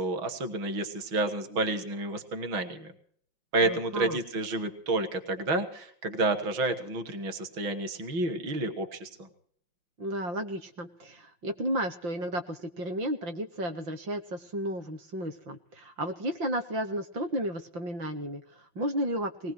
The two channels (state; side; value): late; left; 5.7 ms